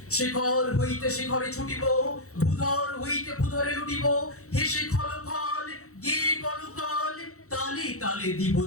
শিখর হইতে শিখরে ছুটিব, ভূধর হইতে ভূধরে লুটিব, হেসে খলখল গে কলকল, তালে তালে দিব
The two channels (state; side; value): late; right; 0.65 ms